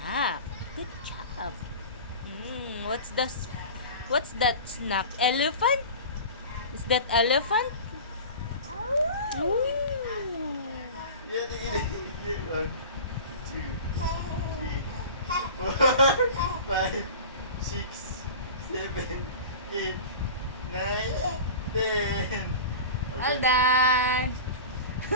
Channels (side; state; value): both; inverted; correlation -0.35